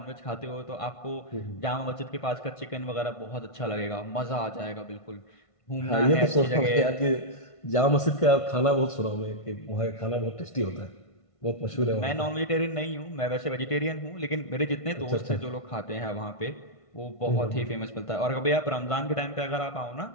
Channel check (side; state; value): right; late; 1.5 ms